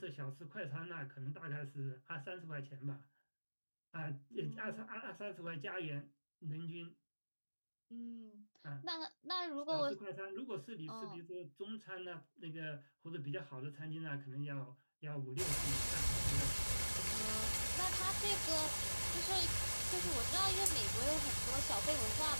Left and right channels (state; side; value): inverted; both; correlation -1.00